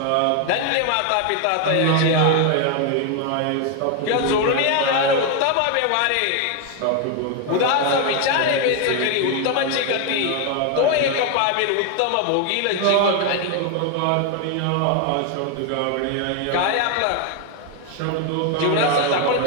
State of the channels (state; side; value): different; both; correlation 0.01